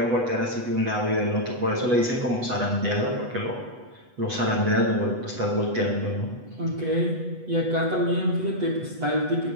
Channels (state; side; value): late; left; 8.1 ms